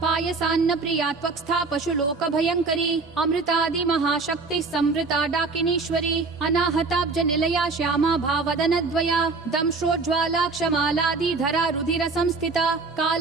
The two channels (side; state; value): left; quieter; 4.1 dB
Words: पायसान्न प्रिया त्वक्स्था पशुलोक भयंकरी अमृतादि महाशक्ति संवृता डाकिनीश्वरी अनाहताब्ज निलया श्यामा भावदनद्वया दंश्रोज्ज्वाला क्षमालादि धरा रुधिर संस्थिता